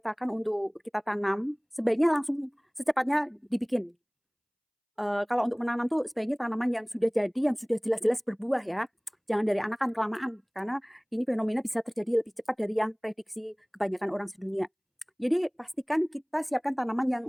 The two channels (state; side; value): identical; both; correlation 1.00